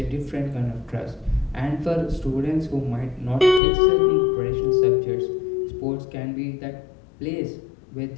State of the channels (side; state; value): right; drops out; at 3.6 s